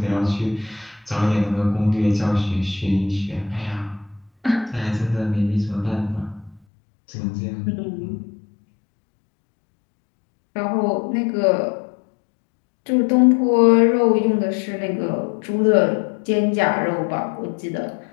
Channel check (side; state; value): right; drops out; at 6.6 s